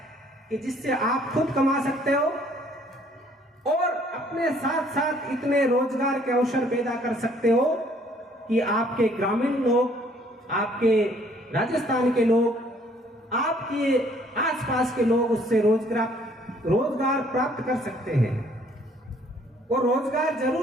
कि जिससे आप खुद कमा सकते हो और अपने साथ साथ इतने रोजगार के अवसर पैदा कर सकते हो कि आपके ग्रामीण लोग, आपके राजस्थान के लोग, आपके आसपास के लोग उससे रोजगार प्राप्त कर सकते हैं। और रोजगार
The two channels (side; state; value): both; normal; correlation 0.61